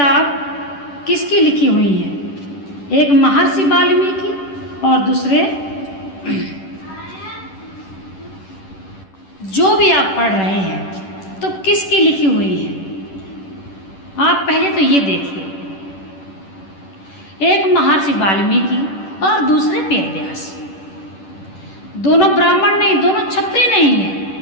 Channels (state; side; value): late; right; 10 ms